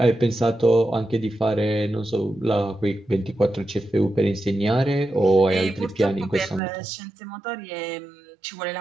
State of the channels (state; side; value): drops out; left; at 6.6 s